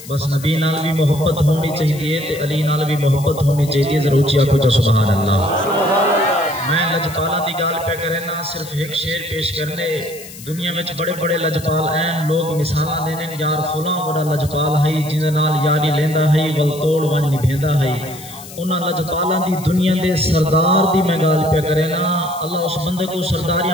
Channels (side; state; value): left; noise; hiss, 16 dB below the sound